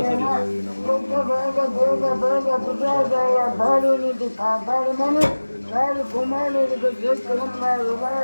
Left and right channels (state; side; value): inverted; both; correlation -1.00